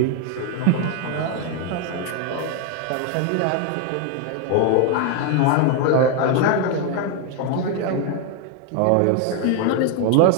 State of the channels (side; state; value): both; different; correlation 0.01